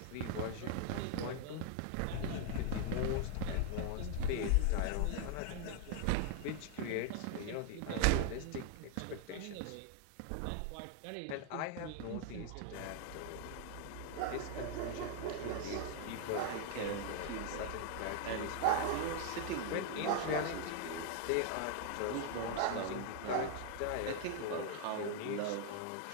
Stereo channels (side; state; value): both; different; correlation 0.00